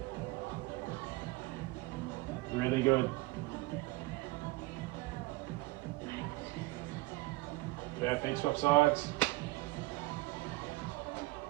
Really good. Perfect, swap sides.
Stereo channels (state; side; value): quieter; left; 21.5 dB